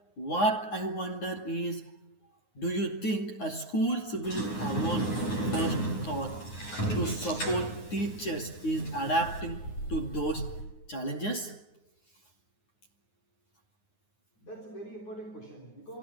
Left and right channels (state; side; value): late; right; 9.6 ms